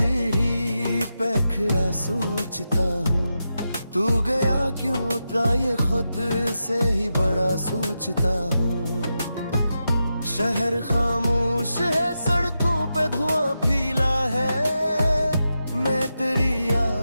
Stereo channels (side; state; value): both; inverted; correlation -0.88